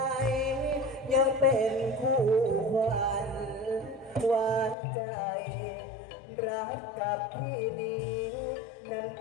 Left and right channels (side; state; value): right; drops out; at 4.8 s